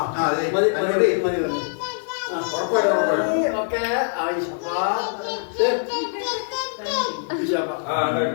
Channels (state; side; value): silent; right; digital silence